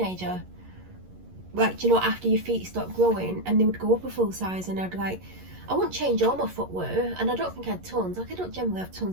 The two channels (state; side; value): late; left; 11 ms